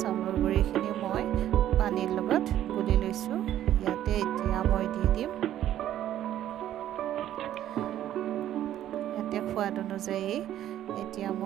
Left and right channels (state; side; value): quieter; left; 12.0 dB